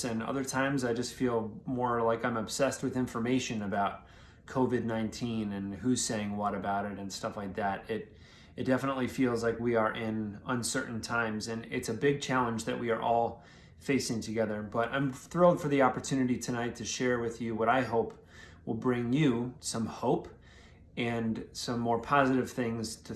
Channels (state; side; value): identical; both; correlation 1.00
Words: and other times I just feel more like I'm obsessed with information about COVID-19 and who's saying what about it and stuff like that. It definitely feels like we are in uncertain times, and it's a big challenge that we are all facing together. But I'm thrilled for the opportunity tonight to share with you what I hope will bring you some hope and some more positive things to